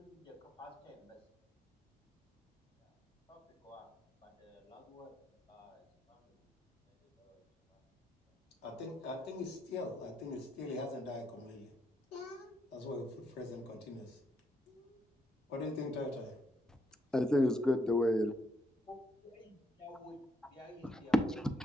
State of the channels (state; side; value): normal; both; correlation 0.76